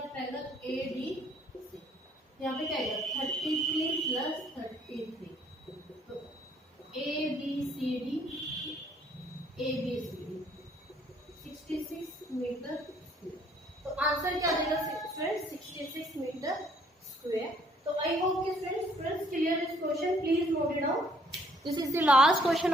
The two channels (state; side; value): normal; both; correlation 0.63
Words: ट्रायंगल ADC, यहाँ पे क्या आएगा 33 प्लस 33, तो ABCD 66 मीटर स्क्वायर, तो आंसर क्या आ जाएगा फ्रेंड्स 66 मीटर स्क्वायर। तो आई होप कि friends clear this question, please note it down, this is the last question